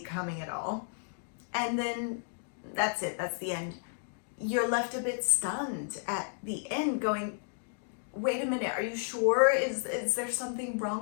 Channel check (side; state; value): right; silent; digital silence